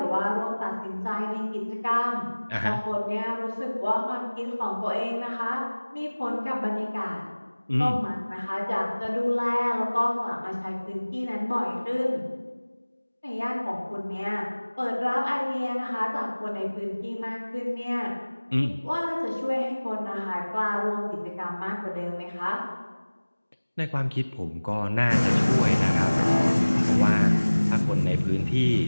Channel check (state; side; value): inverted; both; correlation -1.00